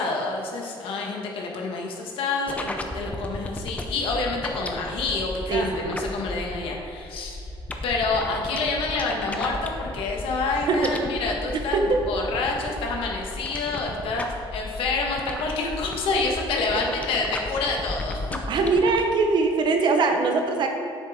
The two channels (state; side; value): normal; both; correlation 0.44